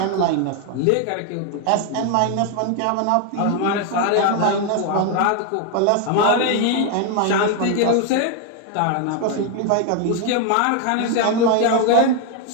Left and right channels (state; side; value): different; both; correlation 0.01